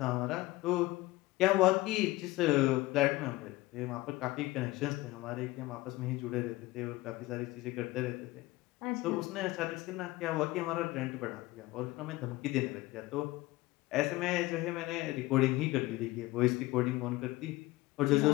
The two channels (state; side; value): quieter; right; 19.2 dB